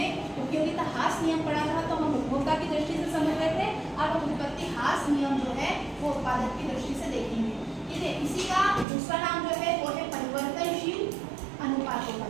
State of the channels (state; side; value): drops out; left; at 8.8 s